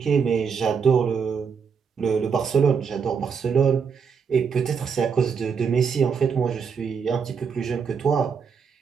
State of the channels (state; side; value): quieter; left; 6.3 dB